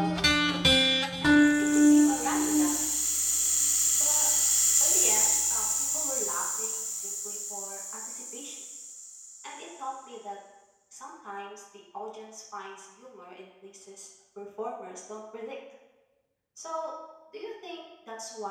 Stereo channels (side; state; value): both; identical; correlation 1.00